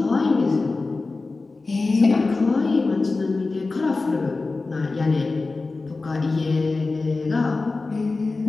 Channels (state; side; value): quieter; right; 3.6 dB